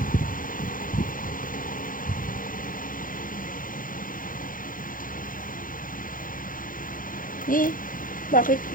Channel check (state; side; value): late; right; 0.40 ms